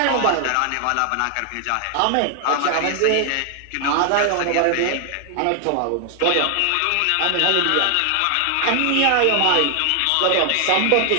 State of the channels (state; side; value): different; both; correlation 0.00